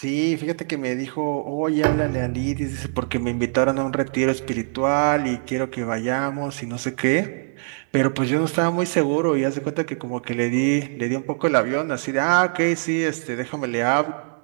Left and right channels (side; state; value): left; silent; digital silence